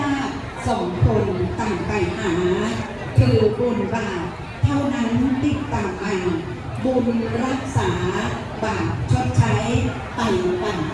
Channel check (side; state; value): both; identical; correlation 1.00